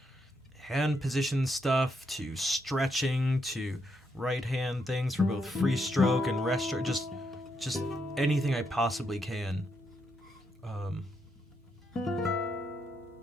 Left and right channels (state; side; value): normal; both; correlation 0.78